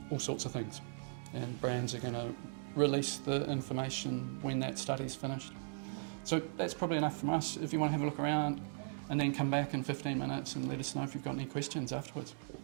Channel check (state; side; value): silent; left; digital silence